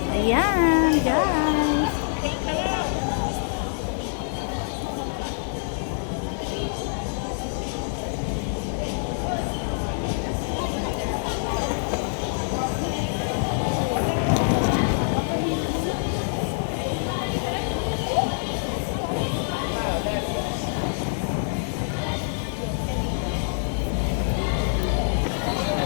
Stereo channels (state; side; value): silent; right; digital silence